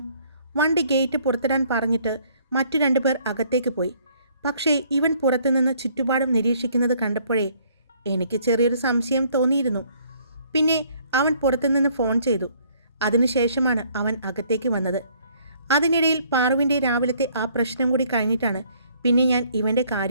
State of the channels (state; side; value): inverted; both; correlation -0.62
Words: വണ്ടി ഗേറ്റ് പുറത്തിടാൻ പറഞ്ഞിട്ട് മറ്റു 2 പേർ അകത്തേക്ക് പോയി. പക്ഷേ ഇവൻ പുറത്തുനിന്ന് ചുറ്റുപാടും നിരീക്ഷിക്കുന്നത് കണ്ടപ്പോഴേ എനിക്ക് ചെറിയൊരു സംശയം തോന്നിയിരുന്നു. പിന്നെ അവൻ പുറത്തുനിന്ന് ഫോൺ ചെയ്തു. അതിനുശേഷമാണ് അവൻ അകത്തേക്ക് വന്നത്. അതിനിടയിൽ പാറുവിൻ്റെ രാവിലത്തെ ആ പ്രശ്നം കൂടി കഴിഞ്ഞിട്ടാണ് പിന്നെ ഞാൻ ഇവൻ്റെ